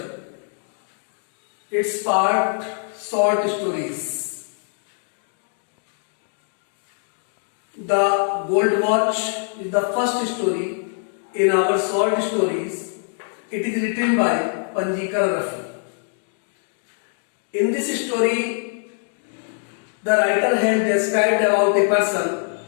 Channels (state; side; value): silent; right; 63 dB below the other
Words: Its part short stories. The Gold Watch is the first story in our short stories. It is written by Panjikar Rafi. In this story, the writer has described about a person